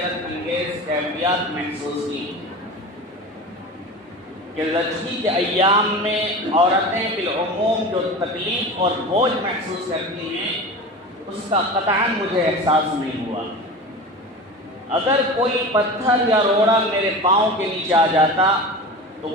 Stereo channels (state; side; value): normal; both; correlation 0.31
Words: انگیز کیفیات محسوس کی کہ زچگی کے ایام میں عورتیں بالعموم جو تکلیف اور بوجھ محسوس کرتی ہیں، اس کا قطعاً مجھے احساس نہیں ہوا۔ اگر کوئی پتھر یا روڑا میرے پاؤں کے نیچے آ جاتا تو